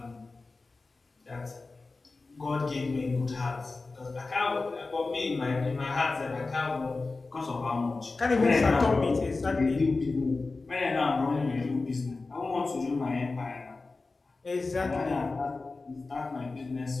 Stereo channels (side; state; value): right; quieter; 3.7 dB